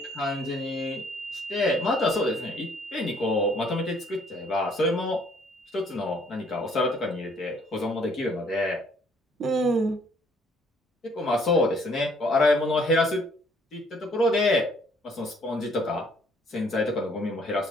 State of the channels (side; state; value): both; normal; correlation 0.63